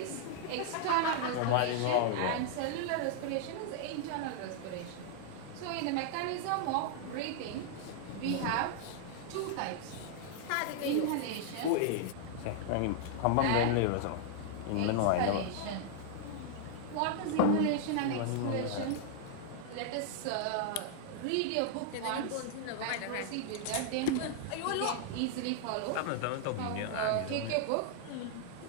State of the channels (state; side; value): different; both; correlation -0.01